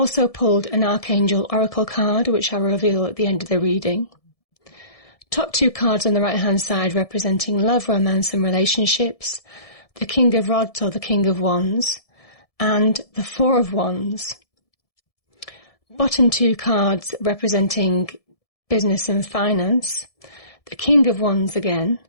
pulled an Archangel Oracle card, which I'll reveal at the end of the reading. Top two cards on the right-hand side representing love, romance and relationships, the King of Rods or the King of Wands, and the Four of Wands. Bottom two cards representing business and finance, the King of Wands again,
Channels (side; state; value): right; late; 1.7 ms